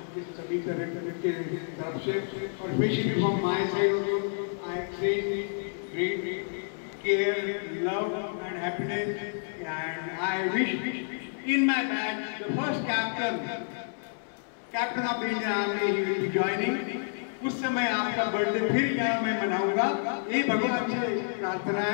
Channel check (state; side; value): silent; right; 58 dB below the other